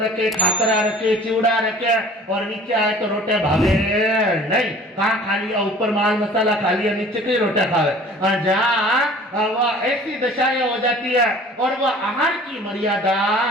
खाकरा रखे, चिवड़ा रखे और नीचे आए तो रोटे भावे नहीं। कहाँ खा लिया, ऊपर माल मसाला खा लिया, नीचे कई रोटे खावे। जहाँ वह ऐसी दशाएं हो जाती है और वह आहार की मर्यादा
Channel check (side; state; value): both; normal; correlation 0.48